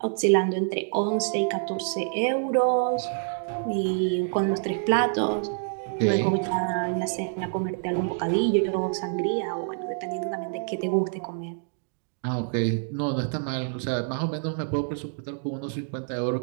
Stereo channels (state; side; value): silent; left; digital silence